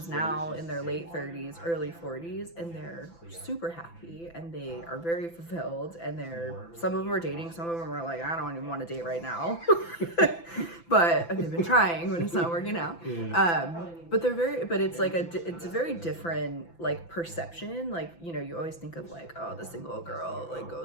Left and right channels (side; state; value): right; late; 5.9 ms